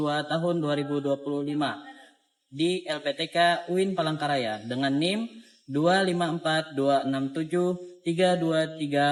tahun 2025 di LPTK UIN Palangkaraya dengan NIM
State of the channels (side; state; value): both; identical; correlation 1.00